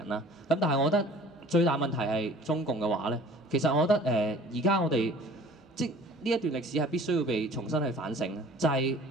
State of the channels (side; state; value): both; normal; correlation 0.48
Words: 啦。咁但係我覺得最大問題係中共嘅話咧，其實我覺得而家我哋即呢一段歷史係必須要被重新去反省，就係